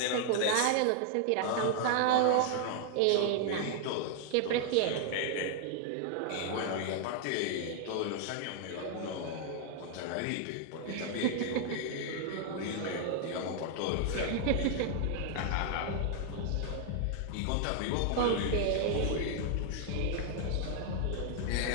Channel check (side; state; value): both; different; correlation 0.00